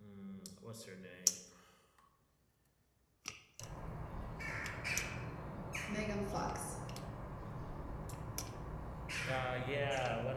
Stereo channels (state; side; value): identical; both; correlation 1.00